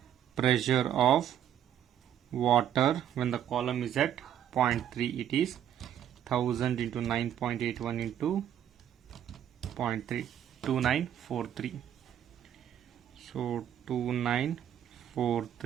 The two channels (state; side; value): quieter; left; 10.2 dB